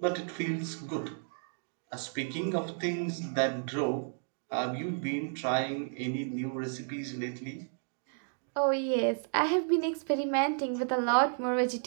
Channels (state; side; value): silent; left; digital silence